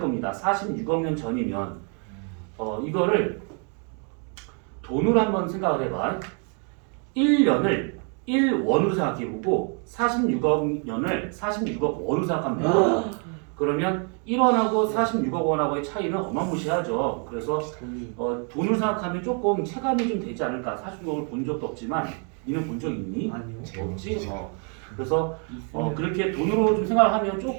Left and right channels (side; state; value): left; quieter; 39.6 dB